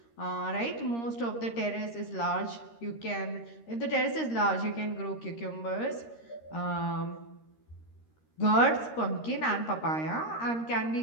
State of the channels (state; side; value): late; right; 13 ms